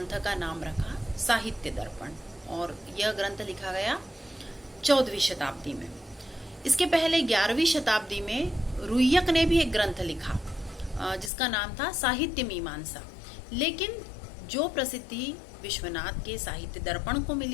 का नाम रखा साहित्य दर्पण, और यह ग्रंथ लिखा गया 14वीं शताब्दी में। इसके पहले 11वीं शताब्दी में रुय्यक ने भी एक ग्रंथ लिखा जिसका नाम था साहित्य मीमांसा, लेकिन जो प्रसिद्धि विश्वनाथ के साहित्य दर्पण को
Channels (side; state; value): right; drops out; at 11.3 s